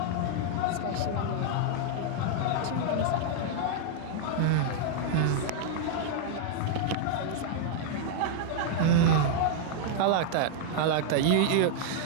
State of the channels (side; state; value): both; different; correlation -0.01